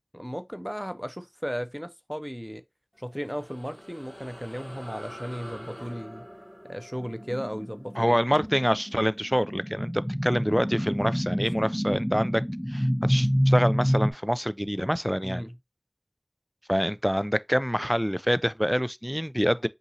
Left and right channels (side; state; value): both; identical; correlation 1.00